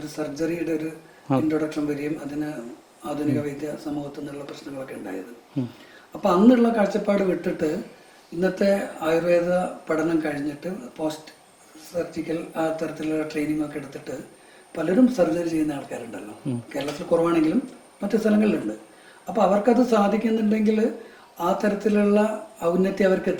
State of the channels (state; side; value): identical; both; correlation 1.00